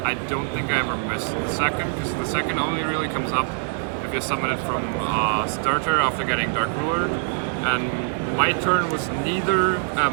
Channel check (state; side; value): quieter; left; 35.7 dB